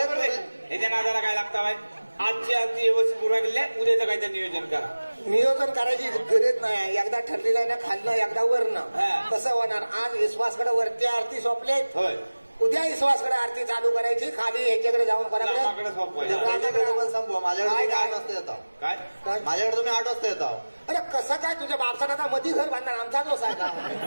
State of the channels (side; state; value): both; inverted; correlation -1.00